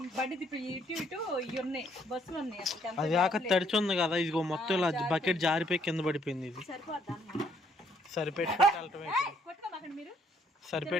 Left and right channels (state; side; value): normal; both; correlation 0.67